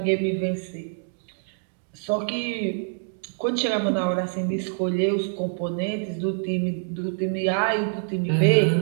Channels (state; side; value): silent; left; digital silence